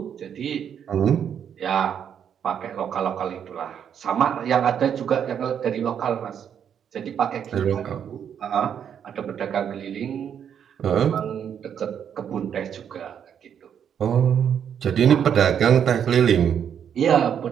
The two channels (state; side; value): quieter; left; 8.4 dB